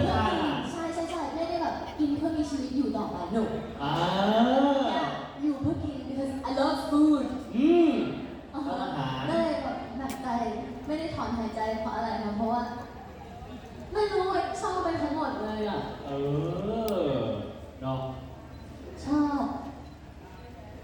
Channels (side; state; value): both; identical; correlation 1.00